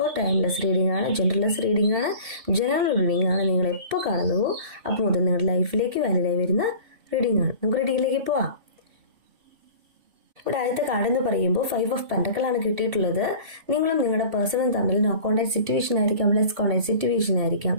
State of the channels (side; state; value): left; late; 2.7 ms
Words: ടൈംലെസ് റീഡിംഗ് ആണ്, ജെൻഡർലെസ് റീഡിംഗ് ആണ്, ജനറൽ റീഡിംഗ് ആണ്. നിങ്ങൾ എപ്പോൾ കാണുന്നുവോ അപ്പോൾ മുതൽ നിങ്ങളുടെ ലൈഫിലേക്ക് വാലിഡായി വരുന്ന റീഡിംഗ് ആണ്. നമുക്ക് റീഡിങ്ങിലേക്ക് പോവാം. ഇവിടെ ആദ്യത്തെ കാർഡ് എന്ന് പറയുമ്പോൾ 5 ഓഫ് പെന്റക്കിൾ ആണ് കിട്ടിയിട്ടുള്ളത്. നിങ്ങളും നിങ്ങളുടെ പേഴ്സണും തമ്മിൽ നോ കോണ്ടാക്ട് സിറ്റുവേഷൻ ആയിരിക്കാം, ലെസ് കോണ്ടാക്ട് സിറ്റുവേഷൻ ആയിരിക്കാം.